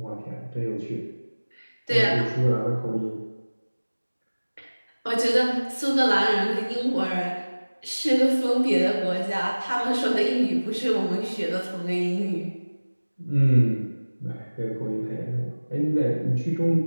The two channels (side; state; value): both; inverted; correlation -1.00